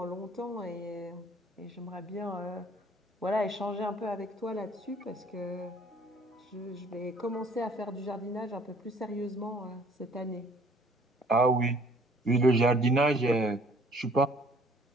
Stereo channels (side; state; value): both; normal; correlation 0.56